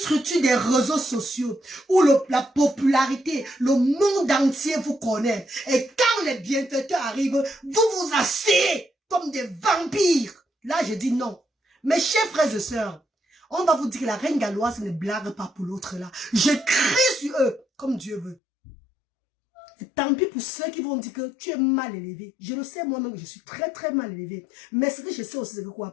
des réseaux sociaux où la popularité, le monde entier vous connaît. Et quand les bienfaiteurs arrivent, vous vous asseyez comme des vampires. Là, je dis non. Mes chers frères et sœurs, on va vous dire que la reine galloise ne blague pas pour l'autre là. Je crie sur eux comme Dieu veut. Et tant pis pour ceux qui vont dire que tu es mal élevé. Je le sais moi-même, je suis très très mal élevé. Mais ce que je sais aussi, c'est que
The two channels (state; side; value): drops out; right; at 18.4 s